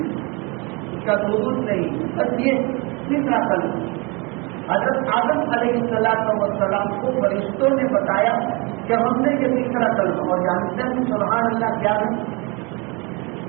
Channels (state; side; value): quieter; left; 28.7 dB